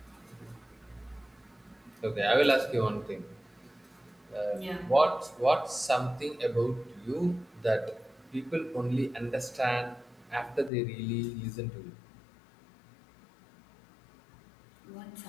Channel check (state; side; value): drops out; right; at 10.7 s